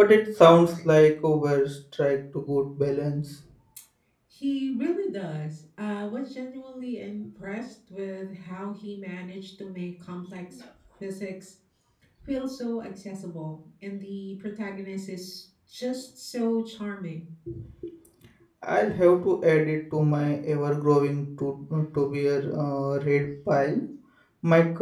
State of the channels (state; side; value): identical; both; correlation 1.00